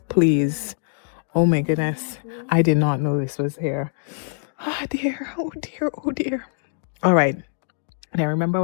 please. Oh my goodness. I did not know this was here. Oh dear. Oh dear. Oh dear. All right. Now remember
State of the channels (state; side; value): silent; right; digital silence